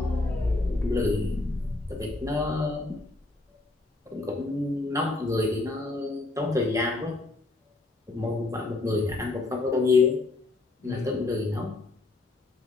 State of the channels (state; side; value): quieter; right; 3.1 dB